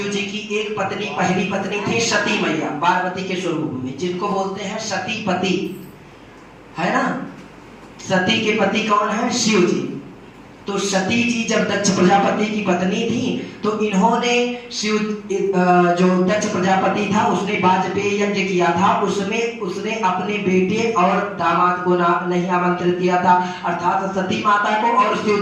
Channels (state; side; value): identical; both; correlation 1.00